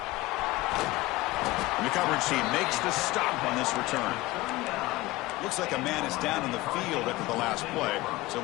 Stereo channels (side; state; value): right; quieter; 19.4 dB